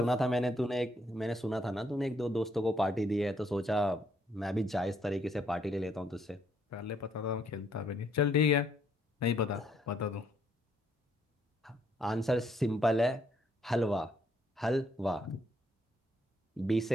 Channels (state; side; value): normal; both; correlation 0.70